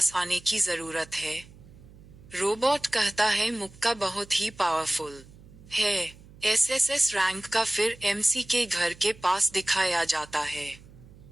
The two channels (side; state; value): right; noise; hum, 21 dB below the sound